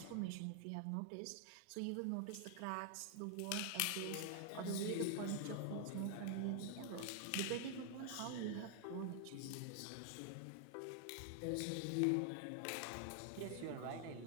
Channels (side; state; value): both; different; correlation 0.00